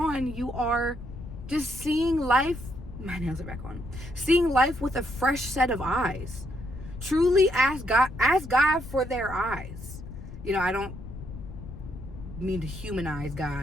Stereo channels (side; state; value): left; noise; rumble, 12 dB below the sound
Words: you are just seeing life, my nails are back on, seeing life with a fresh set of eyes. Truly ask God for their eyes. I don't mean to humanize